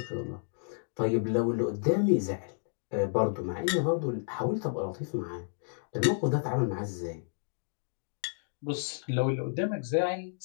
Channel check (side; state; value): right; silent; digital silence